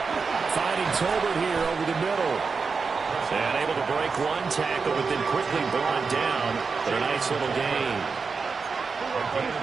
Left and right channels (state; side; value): quieter; left; 5.0 dB